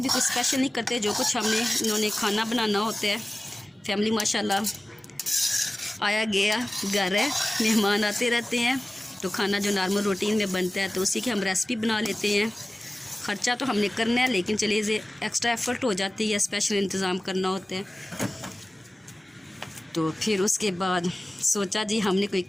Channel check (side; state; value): both; normal; correlation 0.97